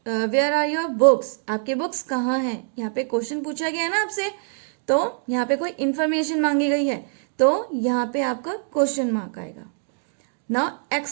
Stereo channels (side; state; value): left; silent; digital silence